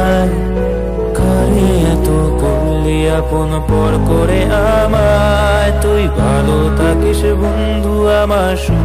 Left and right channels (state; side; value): identical; both; correlation 1.00